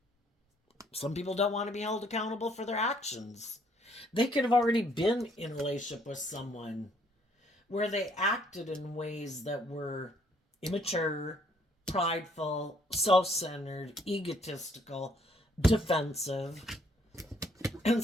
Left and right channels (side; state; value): both; normal; correlation 0.65